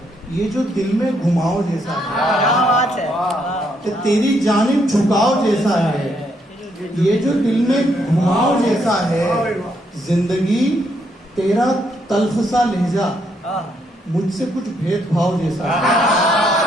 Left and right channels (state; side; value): normal; both; correlation 0.74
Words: ये जो दिल में घुमाव जैसा है, कि तेरी जानिब झुकाव जैसा है, ये जो दिल में घुमाव जैसा है, जिंदगी तेरा तल्ख सा लहजा मुझसे कुछ भेदभाव जैसा है।